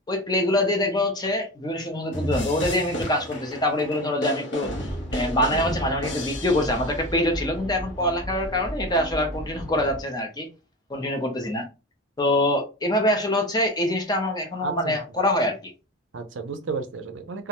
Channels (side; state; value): both; normal; correlation 0.26